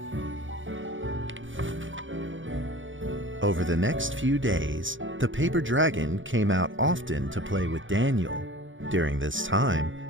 Over the next few days, the paper dragon came out often to play with Daniel. During this time,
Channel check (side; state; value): left; late; 0.56 ms